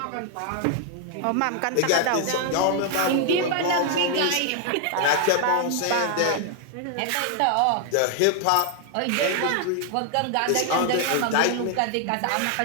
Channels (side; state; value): both; different; correlation 0.00